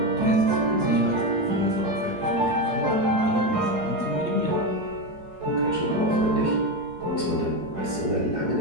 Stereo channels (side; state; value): left; late; 4.7 ms